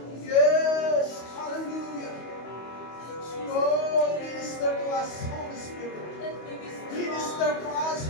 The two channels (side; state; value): right; late; 25 ms